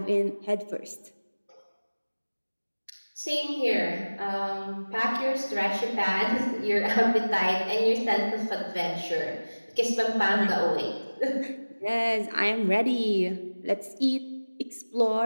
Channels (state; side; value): inverted; both; correlation -1.00